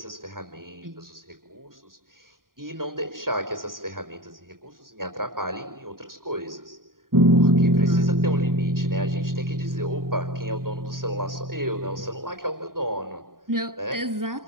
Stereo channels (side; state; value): left; late; 0.91 ms